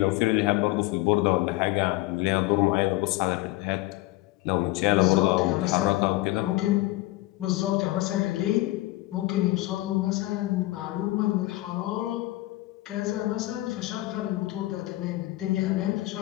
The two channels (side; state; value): right; quieter; 19.0 dB